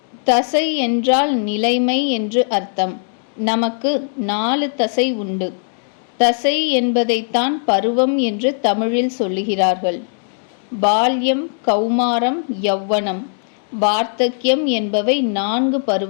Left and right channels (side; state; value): right; silent; digital silence